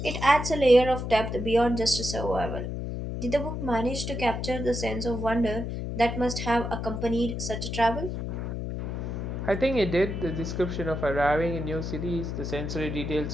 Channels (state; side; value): noise; left; hum, 4 dB below the sound